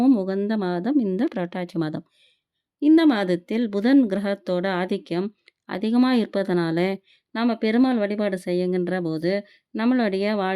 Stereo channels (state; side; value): identical; both; correlation 1.00